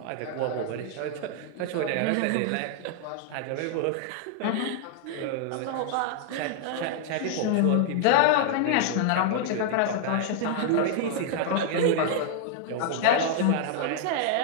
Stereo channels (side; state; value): both; different; correlation 0.00